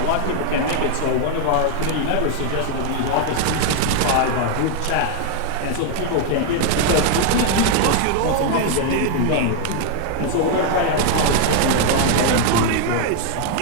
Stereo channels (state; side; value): different; both; correlation 0.00